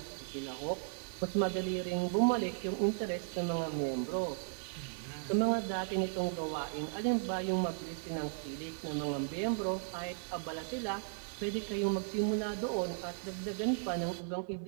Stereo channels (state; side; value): silent; left; 54 dB below the other